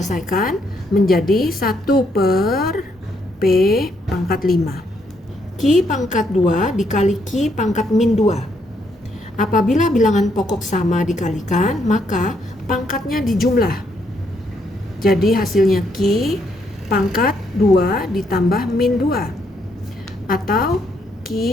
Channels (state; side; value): normal; both; correlation 0.74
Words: menjadi 1 per P pangkat 5. Q pangkat 2 dikali Q pangkat min 2. Apabila bilangan pokok sama dikalikan, maka pangkatnya dijumlah. Jadi hasilnya Q pangkat 2 ditambah min 2. Atau